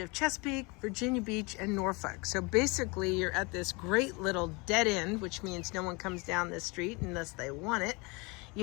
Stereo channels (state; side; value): quieter; right; 27.9 dB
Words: Chesapeake, Virginia Beach, and Norfolk. So basically you're at this great little dead end, which means no one comes down this street unless they want it.